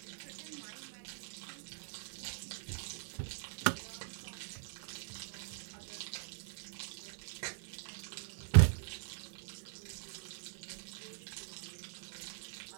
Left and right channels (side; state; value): left; silent; 50 dB below the other